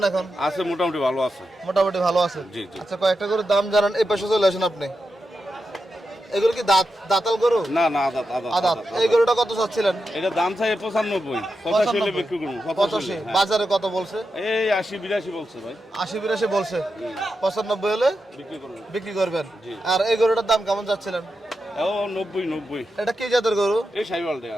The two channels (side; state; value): both; normal; correlation 0.88